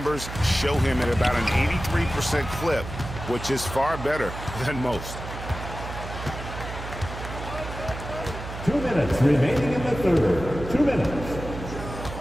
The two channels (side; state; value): right; noise; hum, 9 dB below the sound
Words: show him at about an 83% clip, which is far better than most. 2 minutes remaining in the third. 2 minutes.